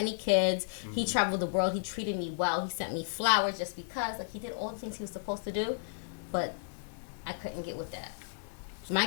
kids. Mm-hmm. He traveled the world. He treated me well. He sent me flowers just because. Like, he did all the things he was supposed to do, but I couldn't get with that. My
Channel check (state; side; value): quieter; right; 38.1 dB